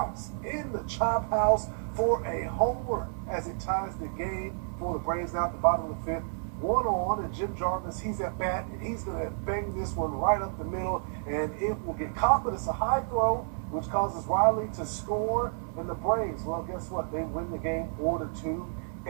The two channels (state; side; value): silent; left; 58 dB below the other